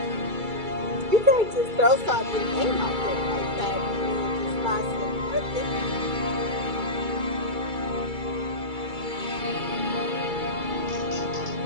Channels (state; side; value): late; left; 2.3 ms